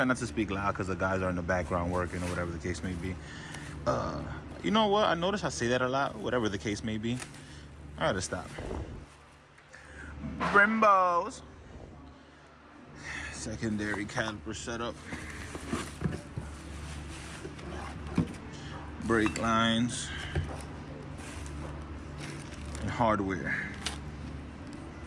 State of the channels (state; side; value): identical; both; correlation 1.00